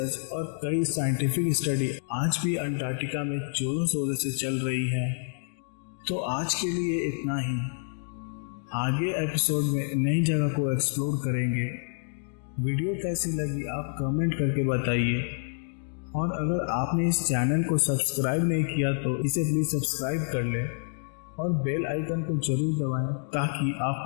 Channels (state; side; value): silent; right; digital silence